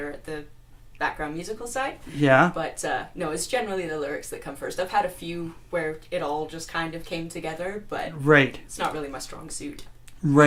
at the background musical side. Yeah. But no, it's generally the lyrics that come first. I've had a few where it all just kind of came together, but right. It's not really my strong suit.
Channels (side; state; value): both; identical; correlation 1.00